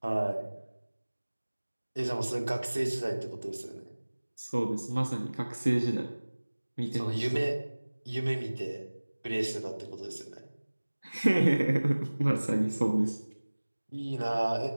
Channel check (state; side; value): inverted; both; correlation -1.00